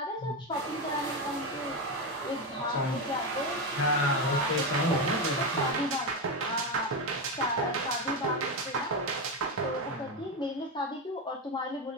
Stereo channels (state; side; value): normal; both; correlation 0.12